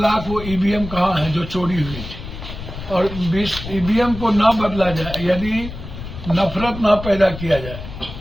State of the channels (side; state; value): left; noise; rumble, 10 dB below the sound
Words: वो ईवीएम कहाँ है जो चोरी हुई थी, और 20 ईवीएम को ना बदला जाए, यदि नफरत ना पैदा किया जाए,